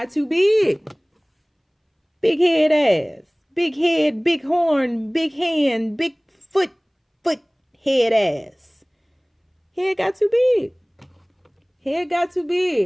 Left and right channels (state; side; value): identical; both; correlation 1.00